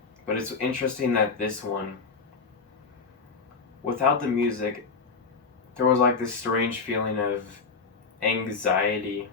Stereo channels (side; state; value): right; quieter; 4.8 dB